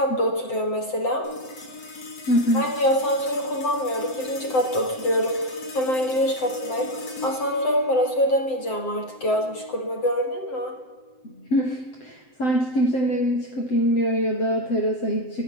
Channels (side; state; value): right; late; 7.8 ms